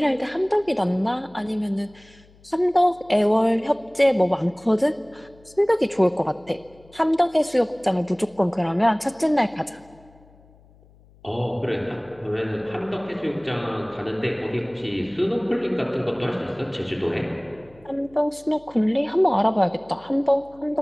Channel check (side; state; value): left; noise; hum, 27 dB below the sound